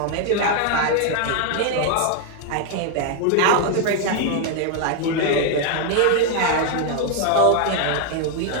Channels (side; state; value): both; different; correlation 0.00